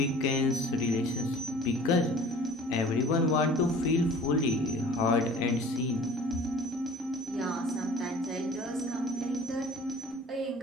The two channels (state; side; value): normal; both; correlation 0.47